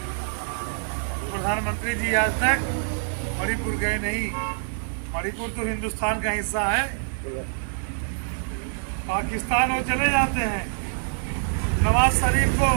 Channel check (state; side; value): silent; left; digital silence